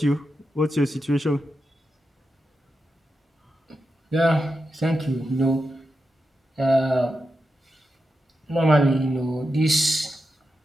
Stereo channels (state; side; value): normal; both; correlation 0.88